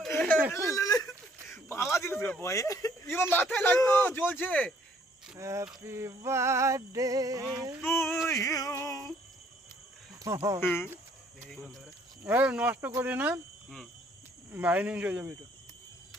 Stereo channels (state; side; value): normal; both; correlation 0.63